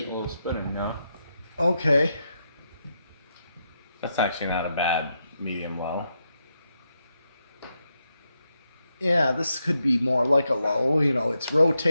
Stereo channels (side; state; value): both; inverted; correlation -0.83